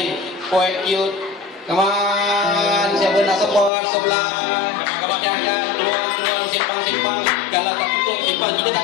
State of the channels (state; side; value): drops out; right; at 3.7 s